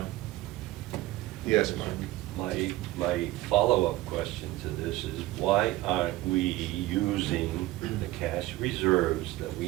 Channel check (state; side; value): quieter; left; 17.1 dB